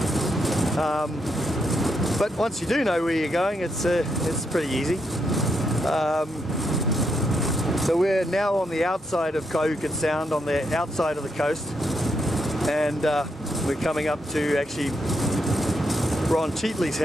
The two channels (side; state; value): both; normal; correlation 0.80